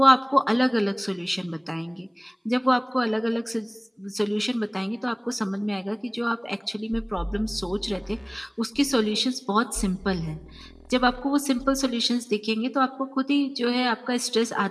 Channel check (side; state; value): both; identical; correlation 1.00